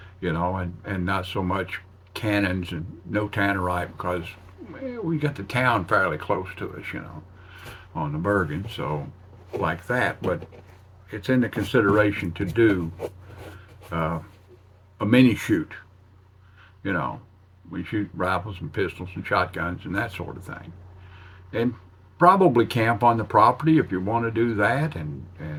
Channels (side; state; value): both; identical; correlation 1.00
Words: and not so much cannons and no Tannerite because we got the town fairly close to us, you know, on the Bergen, so like that. But it's in the consideration to do a mini shoot, you know. We shoot rifles and pistols and shotguns and that sort of thing. And probably camp on the property if you want to do that. And